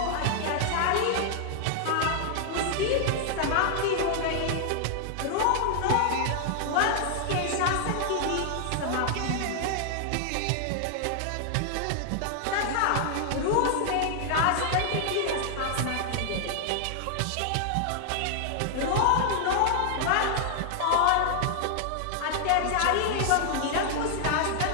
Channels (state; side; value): different; both; correlation 0.00